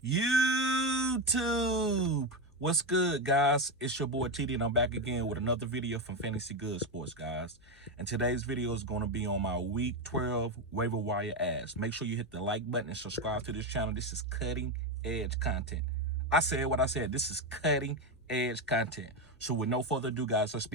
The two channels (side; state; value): left; noise; hum, 30 dB below the sound